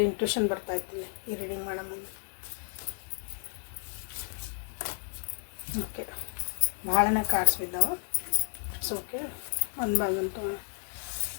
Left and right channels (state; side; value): silent; right; digital silence